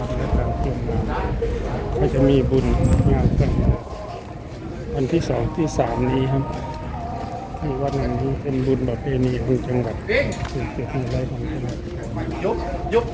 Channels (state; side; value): identical; both; correlation 1.00